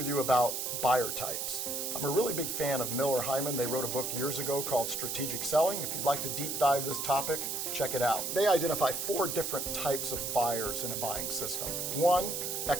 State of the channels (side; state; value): right; noise; hiss, 2 dB below the sound